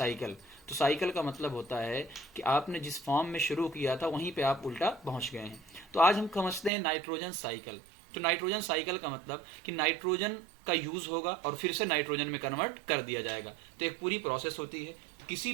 तो साइकिल का मतलब होता है कि आपने जिस फॉर्म में शुरू किया था वहीं पे आप उल्टा पहुंच गए हैं। तो आज हम समझते हैं नाइट्रोजन साइकिल। तो नाइट्रोजन साइकिल का मतलब कि नाइट्रोजन का यूज होगा और फिर से नाइट्रोजन में कन्वर्ट कर दिया जाएगा। तो एक पूरी प्रोसेस होती है, किसी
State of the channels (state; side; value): drops out; left; at 6.7 s